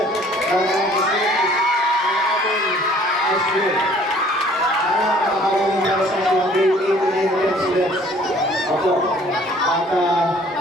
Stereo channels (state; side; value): normal; both; correlation 0.55